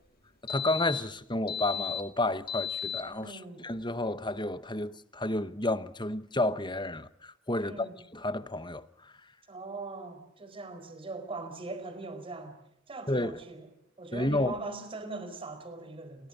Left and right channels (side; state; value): both; normal; correlation 0.51